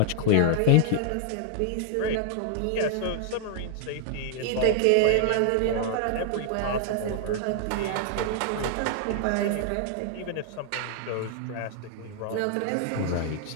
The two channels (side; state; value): both; different; correlation 0.00